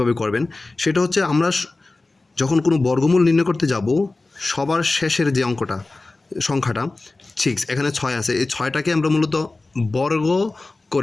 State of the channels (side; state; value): right; quieter; 3.3 dB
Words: করবেন। সেটা হচ্ছে, আমরা যখন কোনো বর্গমূল নির্ণয় করতে যাব, সবার শেষের যে সংখ্যাটা 6, এখানে 6 আছে, এই 6টাকে আমরা মূলত বর্গ